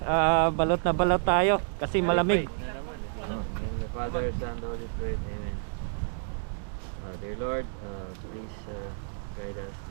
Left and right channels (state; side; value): silent; left; digital silence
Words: Balot na balot tayo kasi malamig. In the Father, Son, and Holy Spirit, Amen. Dear Lord, please